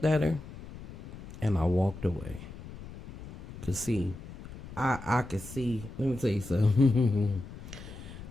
at her and I walked away. Cause see, I can see, let me tell you something.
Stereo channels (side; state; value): left; noise; rumble, 14 dB below the sound